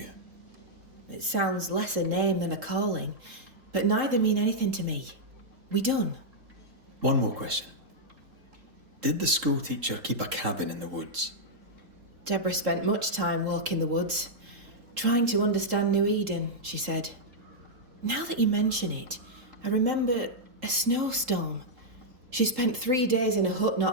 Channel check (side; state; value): left; late; 3.7 ms